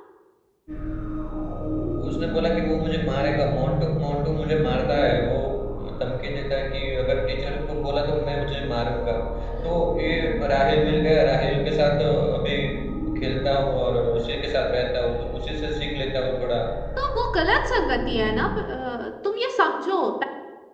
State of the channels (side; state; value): both; identical; correlation 1.00